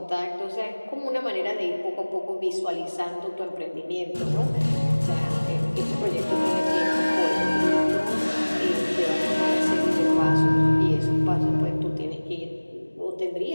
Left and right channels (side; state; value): both; inverted; correlation -1.00